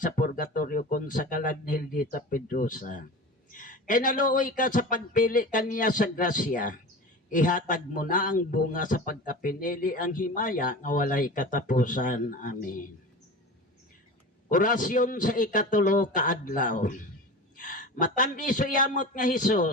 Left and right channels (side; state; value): both; normal; correlation 0.32